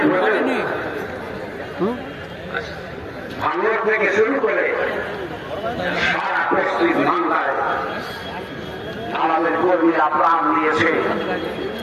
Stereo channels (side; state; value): both; identical; correlation 1.00